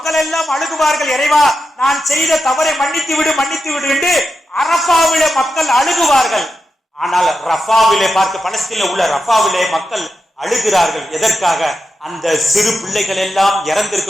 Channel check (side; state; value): both; normal; correlation 0.88